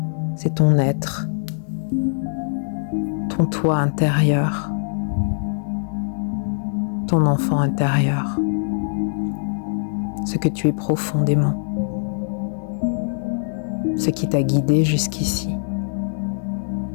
c'est ton être, ton toi intérieur, ton enfant intérieur, ce que tu es profondément, ce qui t'a guidé jusqu'ici.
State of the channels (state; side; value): silent; right; digital silence